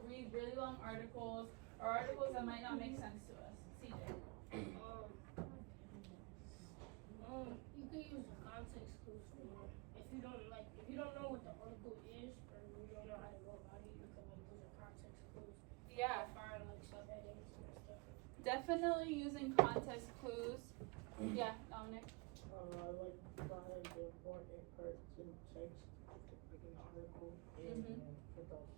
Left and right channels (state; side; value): quieter; left; 28.8 dB